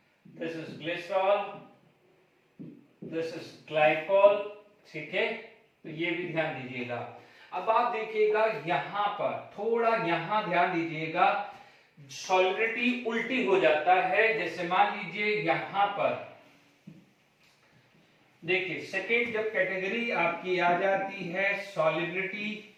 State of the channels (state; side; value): identical; both; correlation 1.00